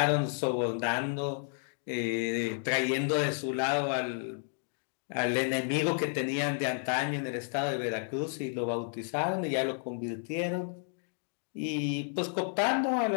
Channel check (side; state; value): right; silent; 57 dB below the other